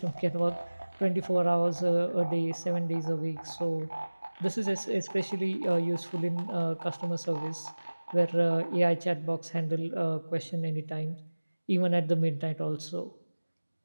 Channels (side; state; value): both; inverted; correlation -1.00